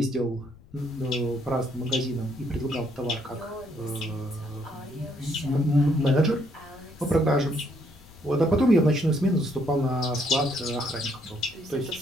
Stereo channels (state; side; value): noise; left; rumble, 23 dB below the sound